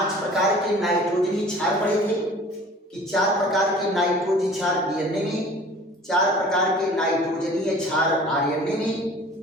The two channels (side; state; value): both; normal; correlation 0.46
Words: प्रकार के नाइट्रोजनी क्षार पढ़े थे कि 4 प्रकार के नाइट्रोजन क्षार डीएनए में, 4 प्रकार के नाइट्रोजनीय क्षार आरएनए में